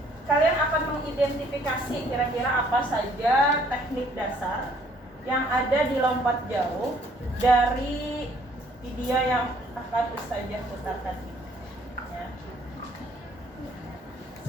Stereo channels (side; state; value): both; normal; correlation 0.62